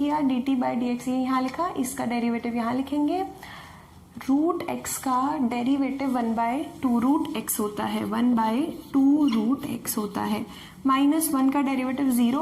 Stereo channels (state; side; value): identical; both; correlation 1.00